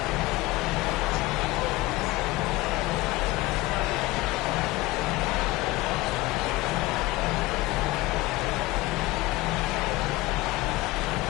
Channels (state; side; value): quieter; right; 19.7 dB